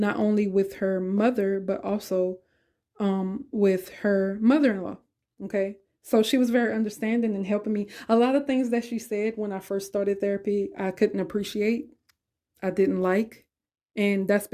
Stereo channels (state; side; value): identical; both; correlation 1.00